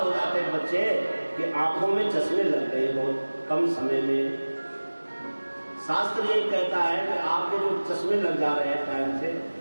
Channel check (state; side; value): inverted; both; correlation -1.00